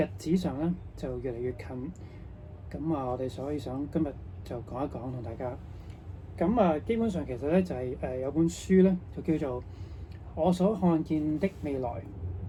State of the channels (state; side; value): identical; both; correlation 1.00